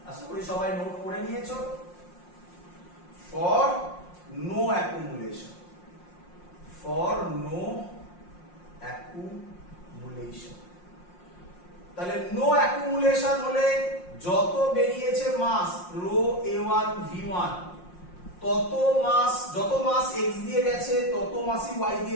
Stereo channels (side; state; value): right; late; 5.6 ms